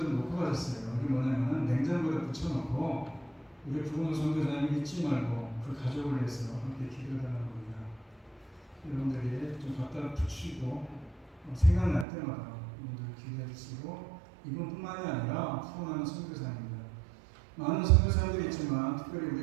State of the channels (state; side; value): drops out; left; at 12.1 s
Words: 좀 놓고 가셨어요. 이게 뭐냐면 냉장고에 붙여놓고 우리 부흥 선교사님 잊지 말고 그 가족을 위해서 함께 기도해달라는 겁니다. 여러분들이 좀 갖다 붙이고 생각날 때마다 여러분들 기도해 주시고 이분뿐만이 아니라 후원하는 선교사님들 많은 선교사님들이 있지만 특별히